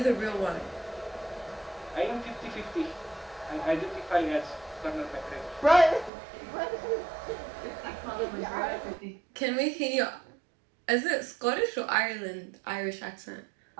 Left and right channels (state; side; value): drops out; left; at 6.1 s